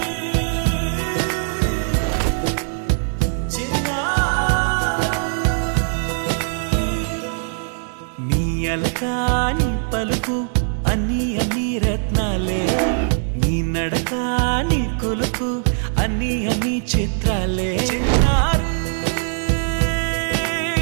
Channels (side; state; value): left; silent; digital silence